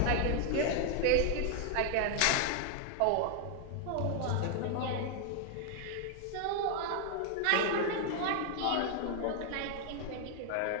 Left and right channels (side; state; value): both; different; correlation 0.00